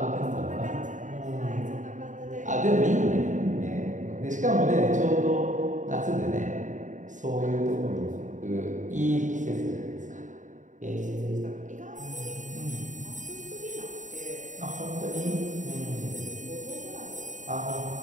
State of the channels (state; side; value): late; left; 0.36 ms